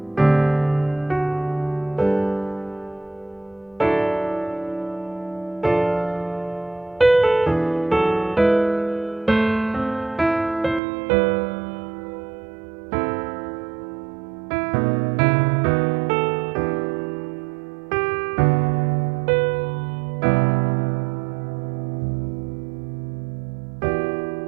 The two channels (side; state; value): left; drops out; at 10.8 s